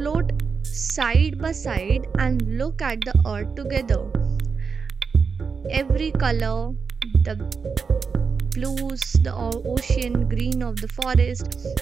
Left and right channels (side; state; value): left; quieter; 5.4 dB